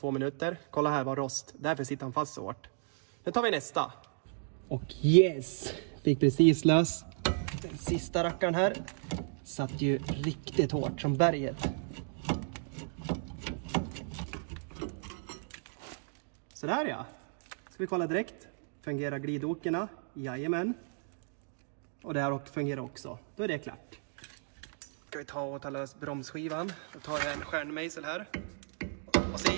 minuter. Kolla här var rost, därför sitter han fast så hårt. Nu tar vi nästa. Och yes, fick precis lös. Den sista rackaren här satt ju riktigt hårt som berget. Sådär ja. Ska vi kolla direkt. Fungerar glidåkerna? Jajamän. Och det här fungerar också. Då är det klart. Ska vi ta lös bromsskivan. Då tar jag en stjärnmejsel här. Och så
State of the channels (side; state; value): left; silent; 55 dB below the other